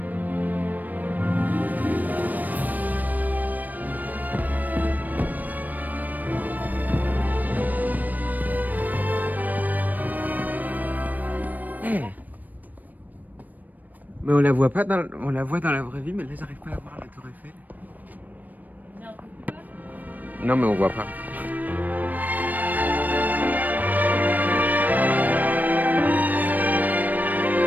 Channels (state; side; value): late; left; 0.083 ms